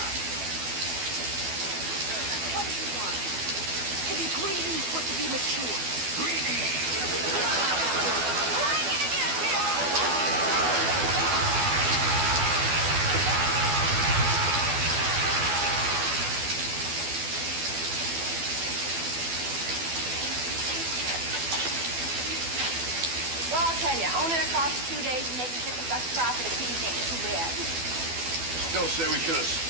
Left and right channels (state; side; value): late; left; 12 ms